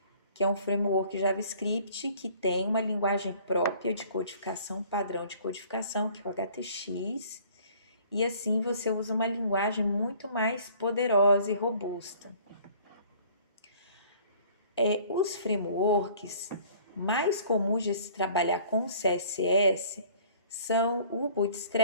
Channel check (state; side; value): inverted; both; correlation -0.53